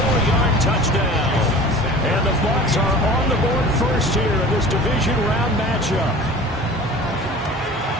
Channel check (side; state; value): both; normal; correlation 0.41